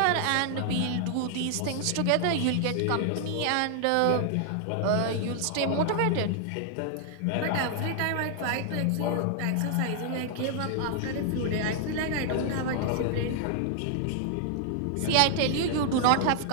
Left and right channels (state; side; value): different; both; correlation 0.00